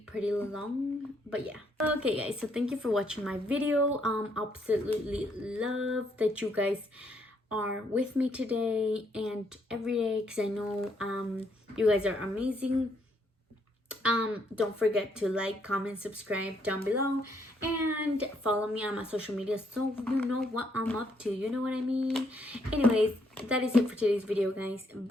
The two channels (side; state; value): both; normal; correlation 0.72